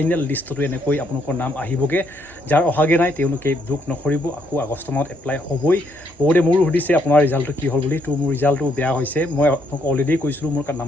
লিষ্টতো এনেকৈ আপোনালোকৰ নাম আহিবগৈ যাৰ অহাগৈ নাই তেওঁলোকে দুখ নকৰিব আকৌ আগষ্ট মাহত এপ্লাই হ'বই বহুতে মোৰো সুধিছে আপোনাৰ ৰিজাল্টটো কি হ'ল বুলি তো মোৰ ৰিজাল্টটো বেয়া হৈছে মই আপোনালোকক অলৰেডি কৈছিলোঁ মোৰ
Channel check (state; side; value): normal; both; correlation 0.73